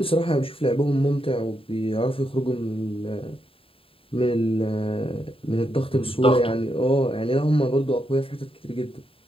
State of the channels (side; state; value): right; late; 0.27 ms